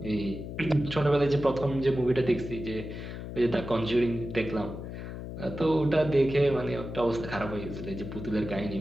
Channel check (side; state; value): left; noise; hum, 8 dB below the sound